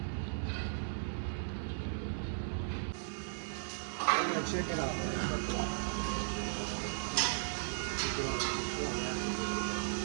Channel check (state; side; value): silent; left; 53 dB below the other